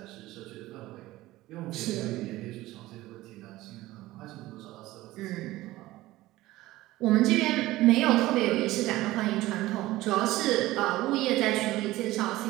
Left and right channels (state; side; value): quieter; left; 17.4 dB